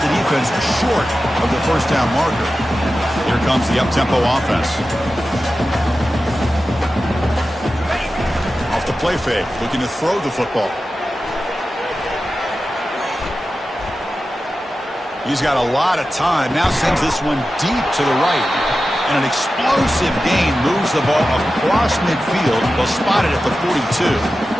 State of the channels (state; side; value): normal; both; correlation 0.93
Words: the defense short of the first down marker. Here comes the up-tempo offense. Off the play fake, looking to throw the football. He's got a lot of time. Now sends this one deep to the right. And an explosive gain moves the ball across midfield, well spotted at the 42.